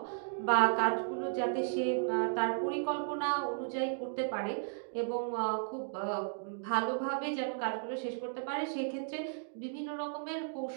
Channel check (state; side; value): silent; left; digital silence